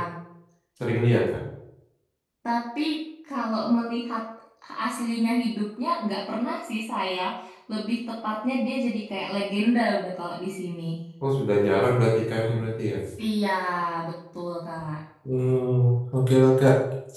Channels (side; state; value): both; identical; correlation 1.00